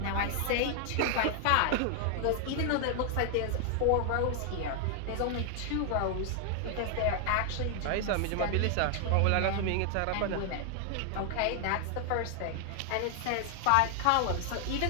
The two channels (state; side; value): different; both; correlation 0.00